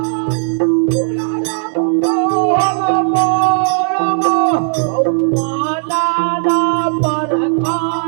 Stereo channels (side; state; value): left; silent; 70 dB below the other